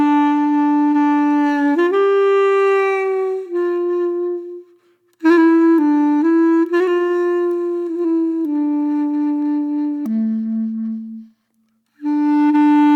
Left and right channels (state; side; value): identical; both; correlation 1.00